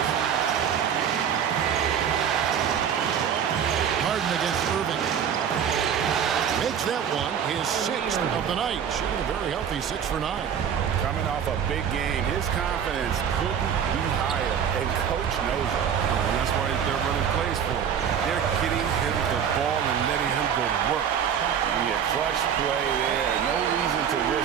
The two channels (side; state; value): left; quieter; 8.2 dB